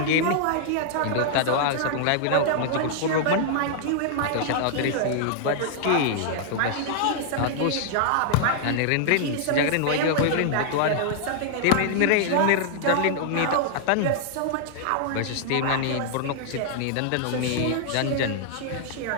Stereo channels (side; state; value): both; different; correlation -0.01